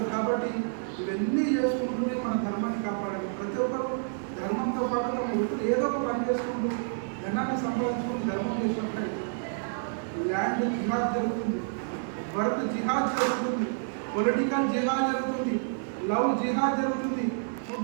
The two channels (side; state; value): left; silent; digital silence